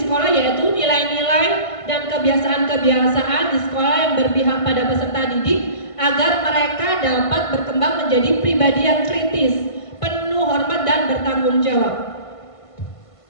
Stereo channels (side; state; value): right; late; 1.5 ms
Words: yaitu nilai-nilai dan kebiasaan-kebiasaan di sekolah yang berpihak pada peserta didik agar mereka dapat berkembang menjadi pribadi yang kritis, penuh hormat dan bertanggung jawab.